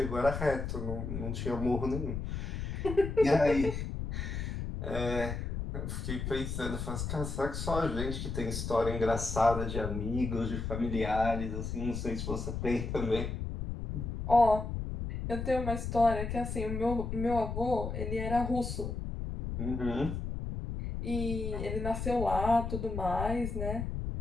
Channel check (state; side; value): noise; left; rumble, 4 dB below the sound